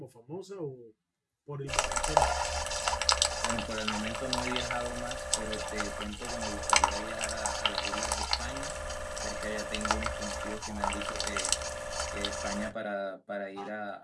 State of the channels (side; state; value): both; identical; correlation 1.00